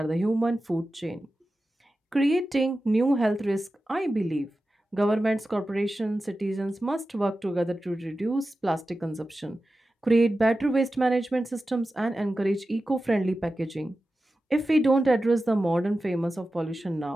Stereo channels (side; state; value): both; normal; correlation 0.93